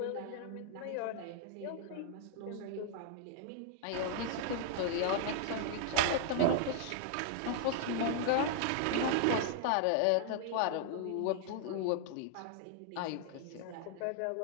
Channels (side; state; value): both; different; correlation 0.00